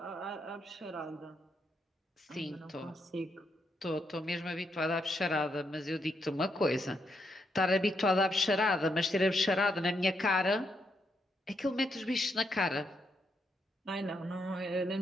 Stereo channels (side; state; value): both; normal; correlation 0.79